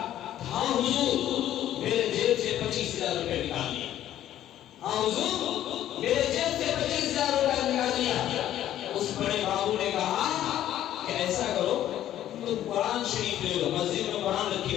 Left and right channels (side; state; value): right; quieter; 12.1 dB